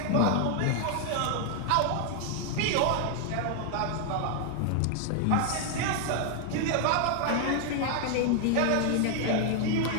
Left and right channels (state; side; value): different; both; correlation 0.00